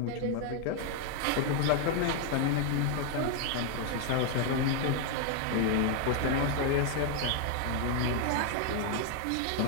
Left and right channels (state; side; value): different; both; correlation 0.00